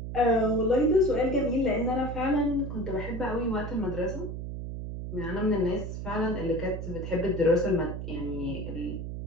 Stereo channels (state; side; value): noise; right; hum, 6 dB below the sound